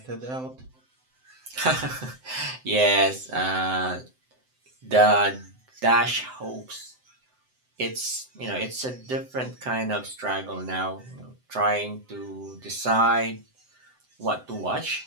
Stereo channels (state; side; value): late; left; 7.8 ms